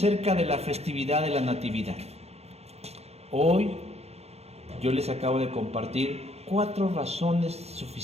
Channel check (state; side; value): late; left; 0.30 ms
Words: de la festividad de la Natividad. Hoy yo les acabo de compartir 4 razones